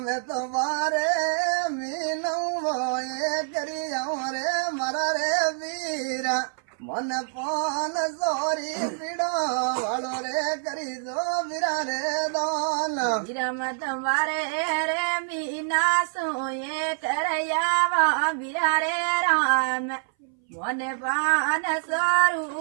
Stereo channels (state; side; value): silent; left; 59 dB below the other